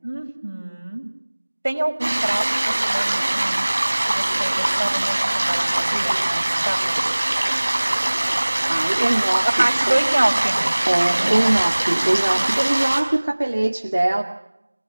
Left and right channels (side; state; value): both; inverted; correlation -1.00